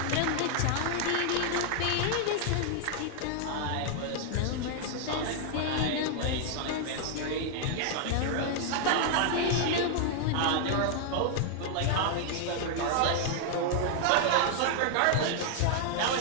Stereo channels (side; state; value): both; different; correlation -0.01